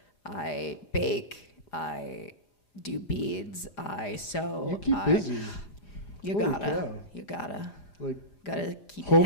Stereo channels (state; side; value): late; right; 4.9 ms